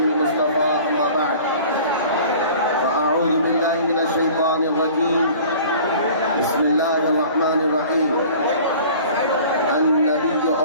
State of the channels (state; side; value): inverted; both; correlation -0.45